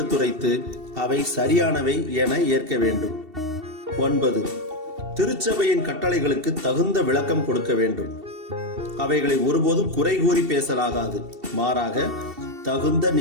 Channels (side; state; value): left; late; 2.7 ms